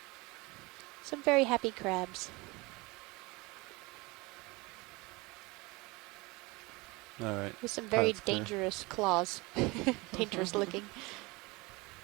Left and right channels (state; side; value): quieter; left; 24.3 dB